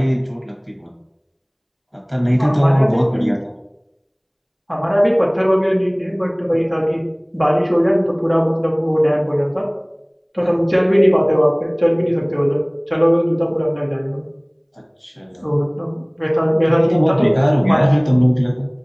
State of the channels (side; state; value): both; identical; correlation 1.00